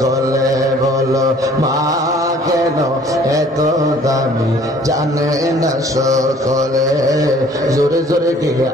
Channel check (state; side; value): normal; both; correlation 0.55